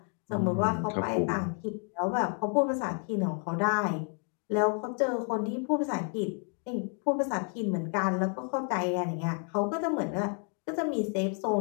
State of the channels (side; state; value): right; quieter; 38.7 dB